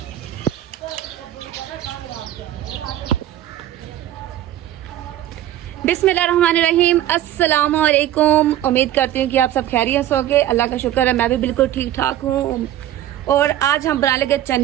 बिस्मिल्लाहिर्रहमानिर्रहीम, अस्सलाम वालेकुम। उम्मीद करती हूँ कि आप सब खैरियत से होंगे। अल्लाह का शुक्र है मैं भी बिल्कुल ठीक ठाक हूँ। और आज हम बना लेंगे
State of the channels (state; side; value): quieter; left; 12.7 dB